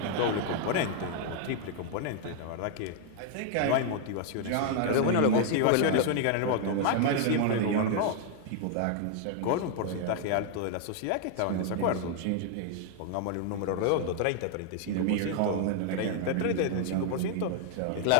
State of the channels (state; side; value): different; both; correlation 0.00